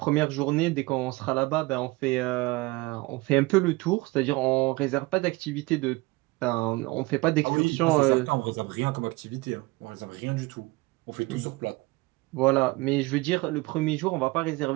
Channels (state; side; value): quieter; left; 23.1 dB